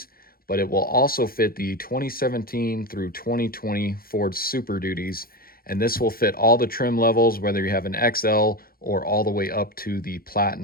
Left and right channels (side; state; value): right; late; 0.43 ms